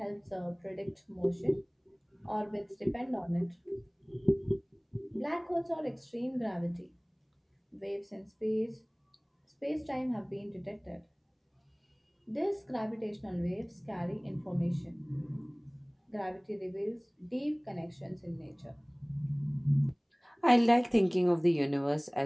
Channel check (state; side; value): identical; both; correlation 1.00